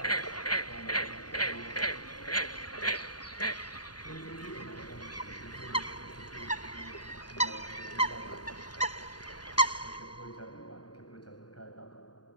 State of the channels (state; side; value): late; right; 0.70 ms